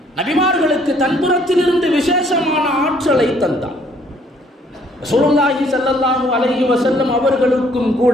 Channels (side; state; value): both; normal; correlation 0.63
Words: நபிமார்களுக்கு தன்புறத்திலிருந்து விசேஷமான ஆற்றலை தந்தான். ரசூலுல்லாஹி ஸல்லல்லாஹு அலைஹி வஸல்லம் அவர்களுக்கும்